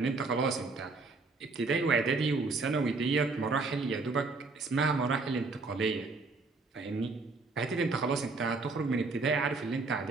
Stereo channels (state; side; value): quieter; left; 3.9 dB